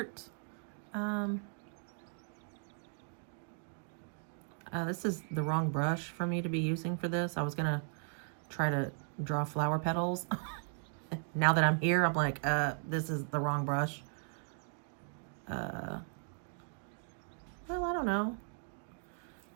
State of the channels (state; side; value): silent; left; 53 dB below the other